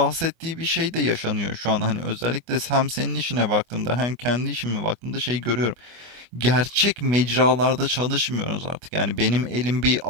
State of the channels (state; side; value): late; left; 25 ms